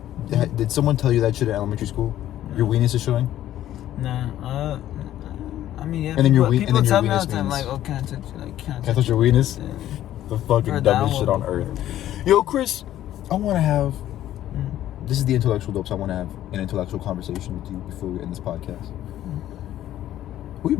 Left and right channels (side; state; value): right; quieter; 12.7 dB